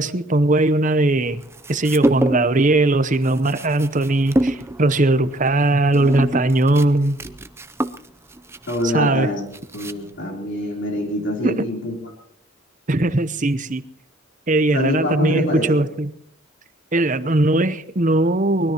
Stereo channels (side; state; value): both; normal; correlation 0.61